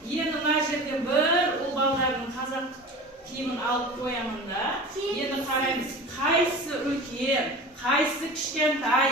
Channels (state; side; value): normal; both; correlation 0.35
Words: Endi mana yerga bir o'g'illarning qozoq kiyimini olib qo'yaman-da. Endi qaraymiz, qaysi ulkan, qaysi kichkintay